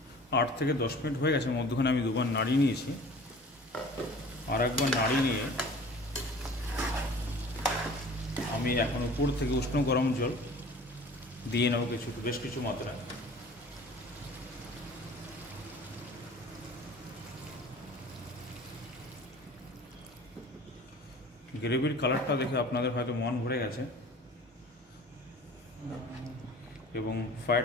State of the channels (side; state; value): both; normal; correlation 0.45